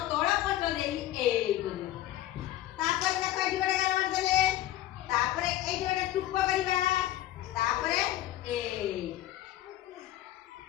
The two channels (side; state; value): right; quieter; 13.8 dB